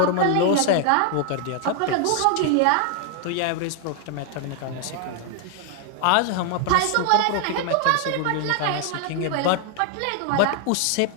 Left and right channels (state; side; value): different; both; correlation 0.00